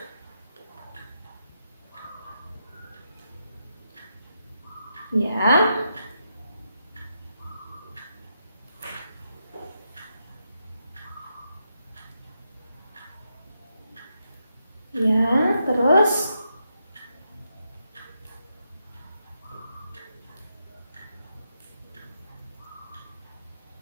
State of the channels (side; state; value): both; inverted; correlation -0.83